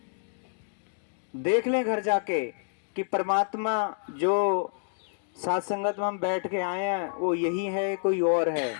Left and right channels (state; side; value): silent; right; digital silence